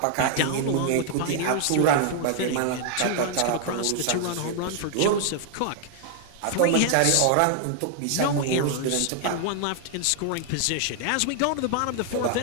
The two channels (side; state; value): both; different; correlation 0.00